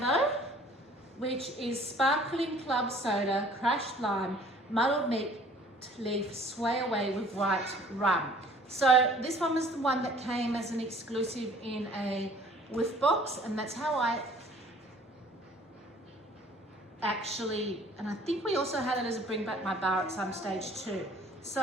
which is sparkling club soda, crushed lime, muddled mint leaf, sway away with white rum. So this one was the one that came as an exclusive in a whiff box, and that's how I actually, and I think we also had it as a bring back my bar at some stage too.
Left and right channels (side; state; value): both; normal; correlation 0.53